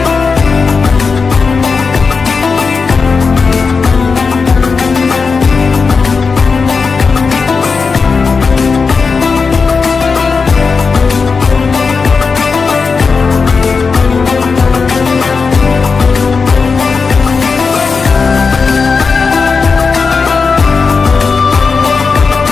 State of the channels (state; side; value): quieter; right; 4.9 dB